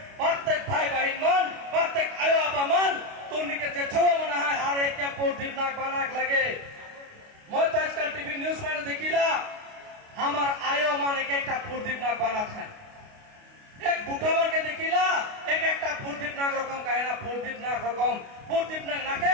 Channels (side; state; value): left; late; 29 ms